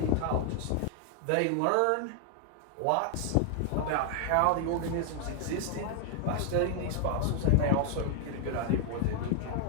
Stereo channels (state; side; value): different; both; correlation 0.00